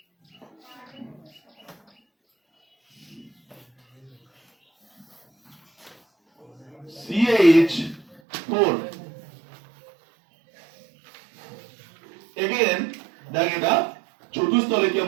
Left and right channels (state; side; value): drops out; left; at 8.2 s